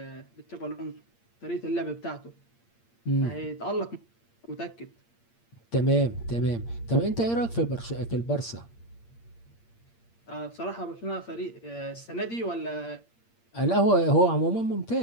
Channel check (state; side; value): late; right; 8.6 ms